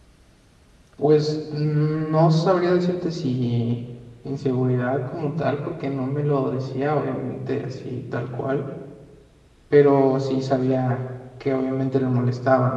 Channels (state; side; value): identical; both; correlation 1.00